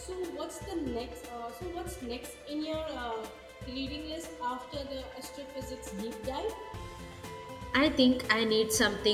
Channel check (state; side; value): identical; both; correlation 1.00